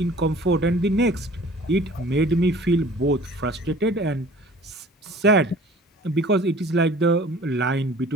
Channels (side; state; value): both; normal; correlation 0.48